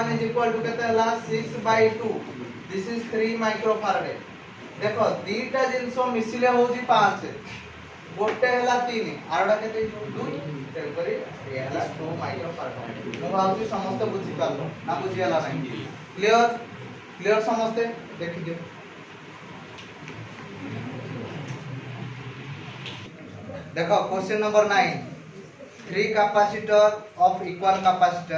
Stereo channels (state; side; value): identical; both; correlation 1.00